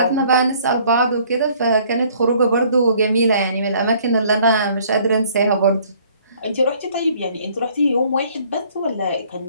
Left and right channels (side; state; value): both; inverted; correlation -0.59